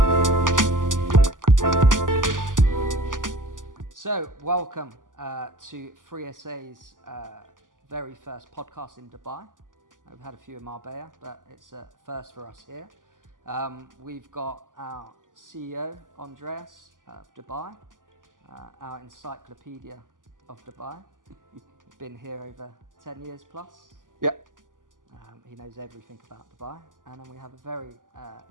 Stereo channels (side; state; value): left; late; 0.88 ms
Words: So, welcome to 3SA's very first podcast in Dubai. We've had a few in Marbella, but it's a first for us here. We've got our CEO, Andreas of Dubai, our encyclopedia of Dubai. Been here over 10 years plus. Yeah. He knows everything about Dubai. And then we have a very